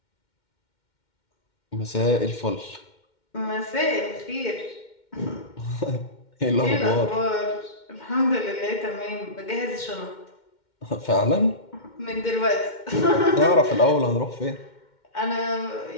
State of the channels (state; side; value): late; right; 2.1 ms